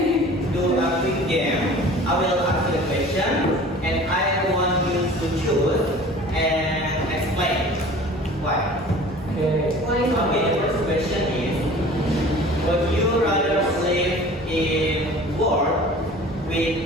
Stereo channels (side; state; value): both; normal; correlation 0.44